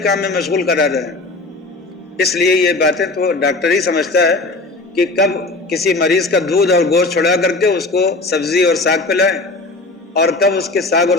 میں مشغول کرا رہے ہیں۔ اس لیے یہ باتیں تو ڈاکٹر ہی سمجھتا ہے کہ کب کسی مریض کا دودھ اور گوشت چھڑا کر کے اس کو سبزی اور ساگ پلائیں، اور کب اس کے ساگ اور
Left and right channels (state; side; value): quieter; right; 3.2 dB